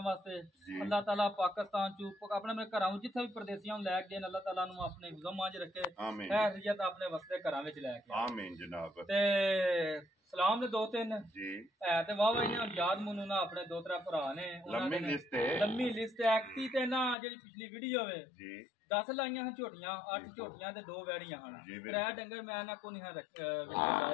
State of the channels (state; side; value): drops out; right; at 17.2 s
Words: वास्ते अल्लाह ताला पाकिस्तान चू अपने मेरे घरां जिथे भी परदेसियां लै गए अल्लाह ताला नूं अपने गुज़म च रखे खैरियत अपने वसदे घरां विच लै के आमीन जनाब। ते सलाम ने दो तीन है ते वाह इन्हां याद मनु ना अपने दो त्रै भरा ने लम्मी लिस्ट एक्टी ते ना जेडी पिछली वीडियो वे 10 लाइयां हैं झोटियां 8 झोटियां ते 2 वैड़ियां हैं। त्रै डंगर मैं ना को नहीं रखे